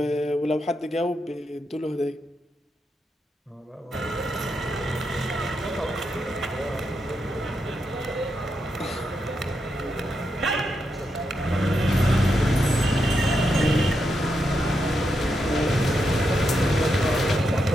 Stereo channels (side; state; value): both; normal; correlation 0.84